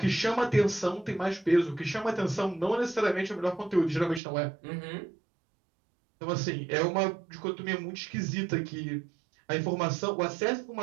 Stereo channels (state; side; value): drops out; left; at 4.2 s